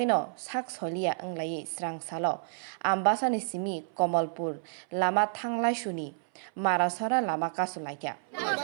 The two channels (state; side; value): silent; left; 58 dB below the other